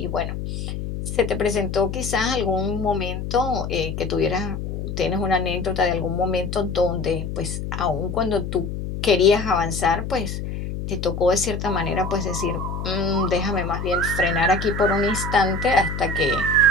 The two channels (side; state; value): left; noise; hum, 5 dB below the sound